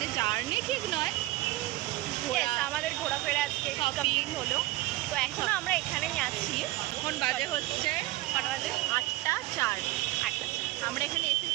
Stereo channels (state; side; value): quieter; left; 18.4 dB